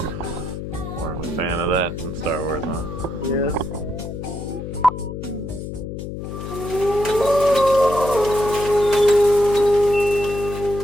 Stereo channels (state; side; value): noise; left; hum, 8 dB below the sound